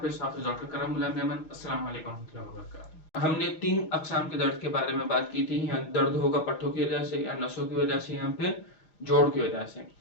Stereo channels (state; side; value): late; right; 6.4 ms